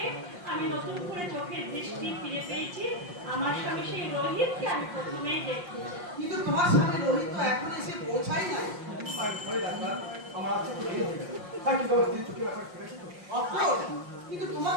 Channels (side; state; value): left; late; 5.6 ms